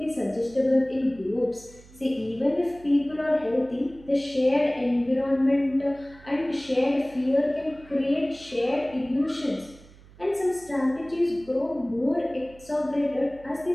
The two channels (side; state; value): right; noise; hum, 23 dB below the sound